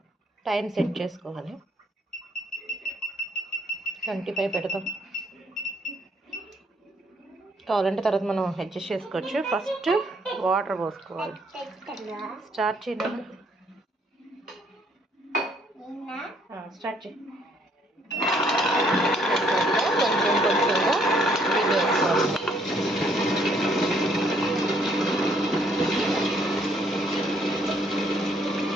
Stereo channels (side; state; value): both; normal; correlation 0.67